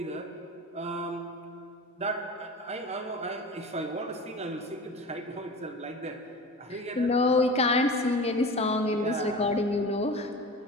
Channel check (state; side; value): normal; both; correlation 0.34